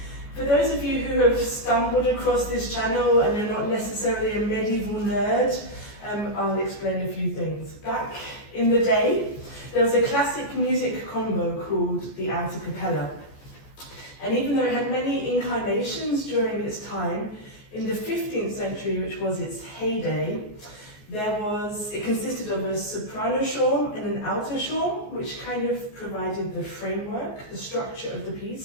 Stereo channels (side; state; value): right; late; 14 ms